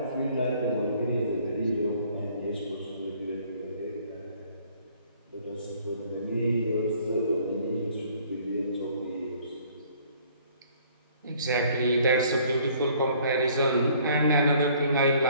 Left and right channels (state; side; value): inverted; both; correlation -0.58